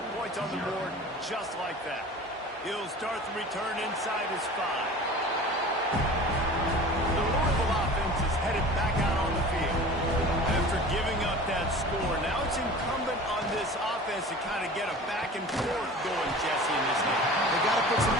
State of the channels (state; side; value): normal; both; correlation 0.40